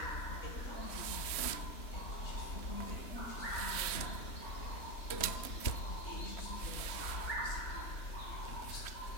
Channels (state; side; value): late; right; 3.1 ms